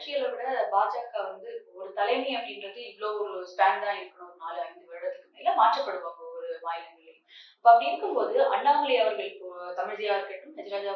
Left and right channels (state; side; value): identical; both; correlation 1.00